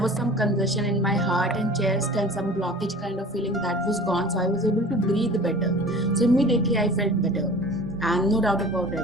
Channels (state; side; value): normal; both; correlation 0.42